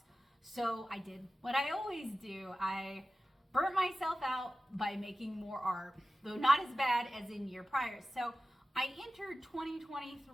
So I did what I always do. I burnt myself out by making more art, though not as bad as in year prior. So I entered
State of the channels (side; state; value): both; normal; correlation 0.95